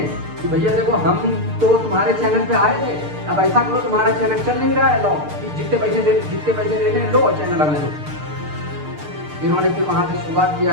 कि भैया देखो हम तो तुम्हारे चैनल पे आए थे, अब ऐसा करो तुम्हारा चैनल चल नहीं रहा है, लो जितने पैसे देने लो चैनल हमें दो। इन्होंने फिर वहाँ से शुरुआत किया,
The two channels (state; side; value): late; left; 6.7 ms